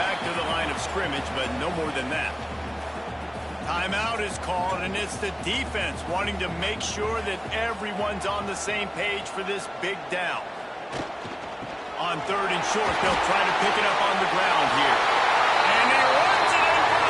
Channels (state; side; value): identical; both; correlation 1.00